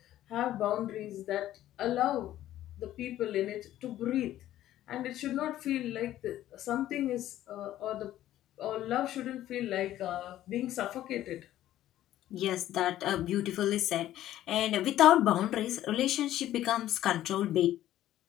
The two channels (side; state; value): right; quieter; 13.3 dB